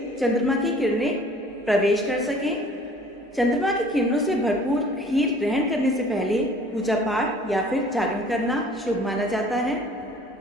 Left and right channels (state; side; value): normal; both; correlation 0.51